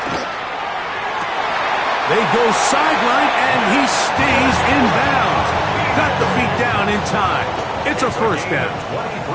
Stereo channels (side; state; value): both; identical; correlation 1.00